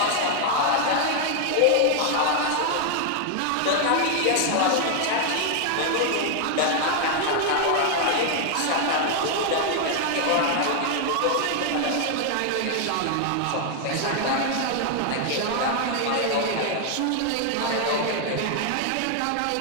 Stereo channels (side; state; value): both; different; correlation 0.00